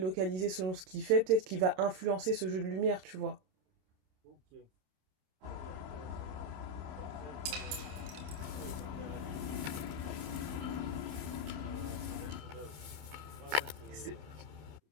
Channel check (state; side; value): late; left; 27 ms